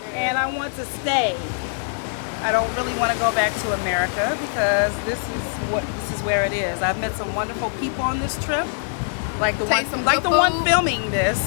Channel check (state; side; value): silent; right; 61 dB below the other